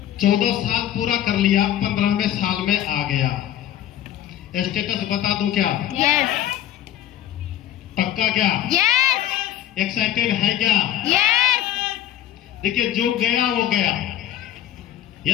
14 साल पूरा कर लिया, 15वें साल में आ गया स्टेटस। बता दूं क्या? यस। पक्का क्या? यस। एक्साइटेड है क्या? यस। देखिए जो गया वो गया।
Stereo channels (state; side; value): quieter; right; 11.9 dB